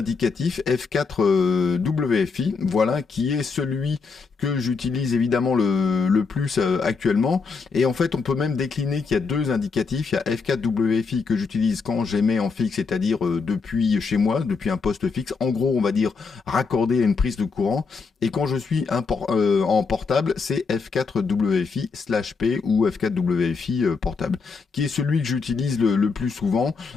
F4 WFI, voilà, qui est celui que j'utilise évidemment le plus actuellement. Et en fait, on peut même décliner qu'il y a deux indicatifs. Il y a F4 WFI que j'utilise quand j'émets en fixe, c'est-à-dire depuis chez moi, depuis un poste fixe. En gros, on va dire raccordé à une prise de courant. Et quand je suis en portable, c'est F4 WFI/P ou F4 WFI portable, qui est celui que j'utilise le plus souvent.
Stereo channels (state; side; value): quieter; right; 4.8 dB